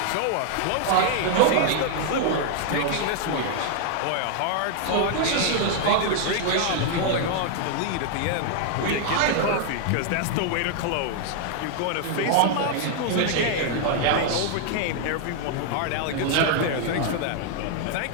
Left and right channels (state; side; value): different; both; correlation 0.00